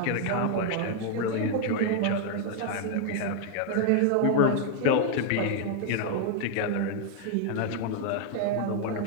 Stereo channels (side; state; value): both; different; correlation 0.00